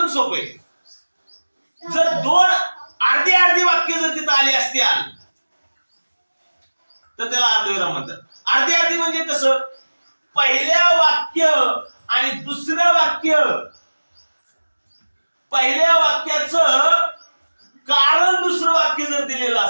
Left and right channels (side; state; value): both; inverted; correlation -1.00